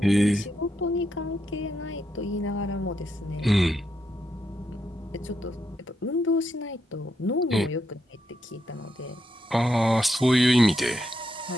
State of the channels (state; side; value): normal; both; correlation 0.82